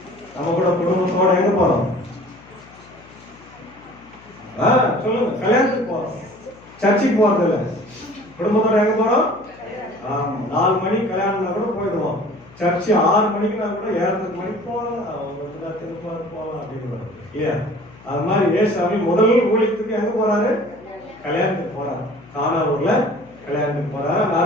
நம்ம கூட குடும்பத்தோட எங்க போறோம்? சொல்லுங்க. கல்யாணத்துக்கு போறோம், சர்ச்சுக்கு போறது இல்ல. குடும்பத்தோட எங்க போறோம்? 4 மணி கல்யாணம்னா கூட போயிடுவோம். சர்ச்சு 6 மணிக்குனா கூட 7:30 மணிக்கு போகலாம், போகலாம் அப்படின்னு இல்லையா? அது மாதிரி ஏசாமி முதல் ஊழியத்துக்கு எங்க போறாரு? கல்யாணத்துக்கு போறாரு. கானாவூர்ல கல்யாணத்துக்கு போறாரு. அந்த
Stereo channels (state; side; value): noise; left; hum, 23 dB below the sound